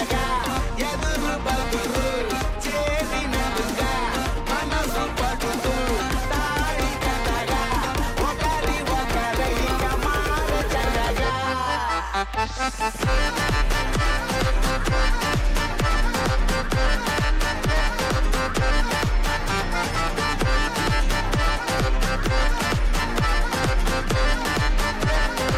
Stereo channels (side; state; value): both; identical; correlation 1.00